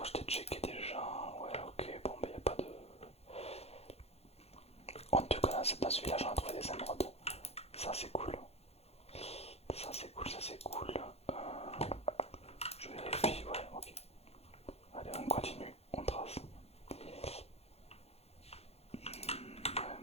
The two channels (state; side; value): late; right; 0.30 ms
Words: checké déjà. Ouais, ok, bon, bah y a pas de. En tout cas, dans ce village, on a trouvé des émeraudes. Ça, c'est cool. Ça, c'est cool, ça, c'est cool. Je vérifie, ouais, ok. Allez, on continue, on trace. Ouais,